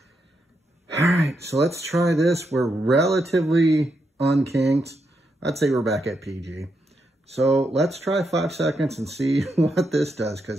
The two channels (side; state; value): both; normal; correlation 0.82